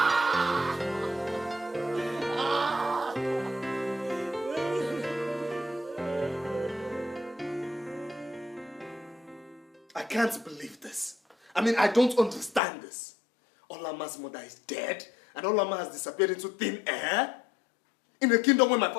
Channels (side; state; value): right; drops out; at 12.6 s